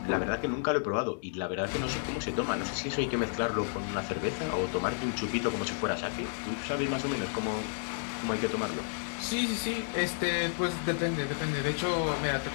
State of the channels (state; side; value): silent; right; digital silence